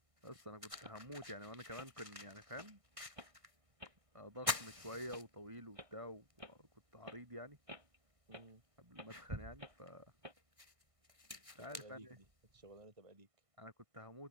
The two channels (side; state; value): left; late; 1.6 ms